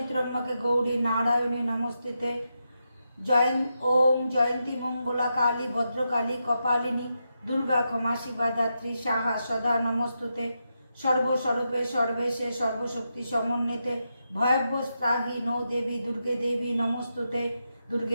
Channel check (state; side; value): inverted; both; correlation -0.86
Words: ত্র্যম্বকে গৌরী নারায়ণী নমস্তুতে। ওম জয়ন্তী মঙ্গলা কালী ভদ্রকালী কপালিনী দুর্গা ক্ষমা শিবা দাত্রী সাহা সদা নমস্তুতে। সর্বস্বরূপে সর্বেশে সর্বশক্তি সমন্বিতে ভয়ব্যস্ত্রাহি নো দেবী দুর্গে দেবী নমস্তুতে।